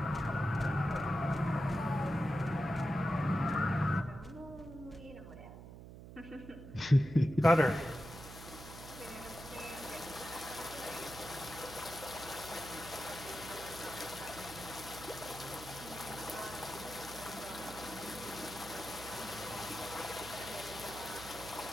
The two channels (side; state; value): right; noise; hum, 13 dB below the sound